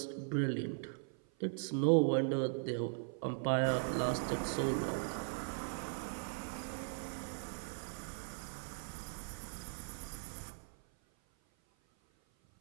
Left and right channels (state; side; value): silent; left; 52 dB below the other